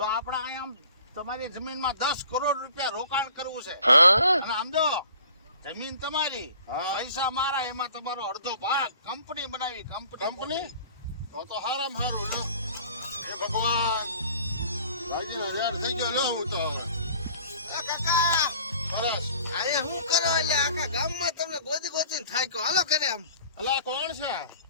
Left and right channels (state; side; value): inverted; both; correlation -0.49